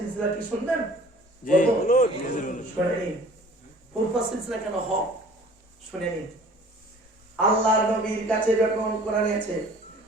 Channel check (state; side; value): normal; both; correlation 0.49